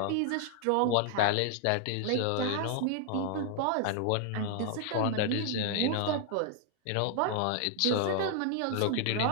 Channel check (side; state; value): both; different; correlation 0.00